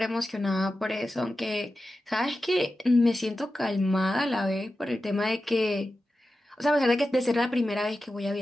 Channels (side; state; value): both; normal; correlation 0.93